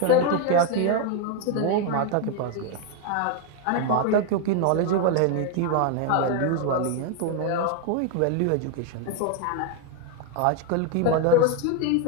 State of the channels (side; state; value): both; different; correlation 0.01